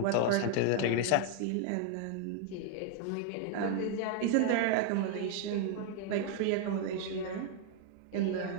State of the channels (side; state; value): both; different; correlation 0.00